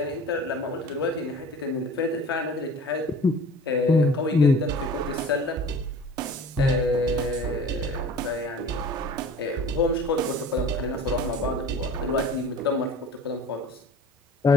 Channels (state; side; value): normal; both; correlation 0.43